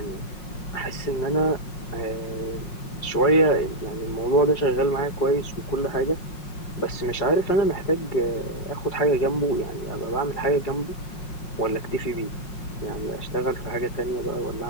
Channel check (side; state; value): right; late; 5.5 ms